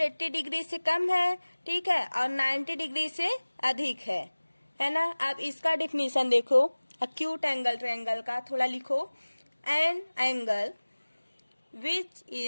डिग्री से कम है। ठीक है, और 90 डिग्री से अधिक है ना। अब इसका डिफिनीशन देखो, एक्यूट एंगल ट्रायंगल का थोड़ा लिखो। An angle which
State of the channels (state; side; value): inverted; both; correlation -1.00